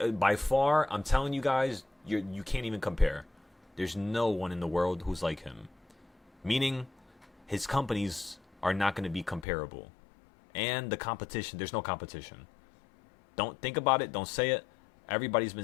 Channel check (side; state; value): right; drops out; at 9.5 s